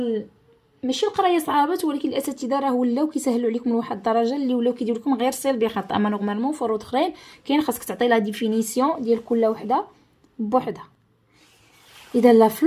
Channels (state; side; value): identical; both; correlation 1.00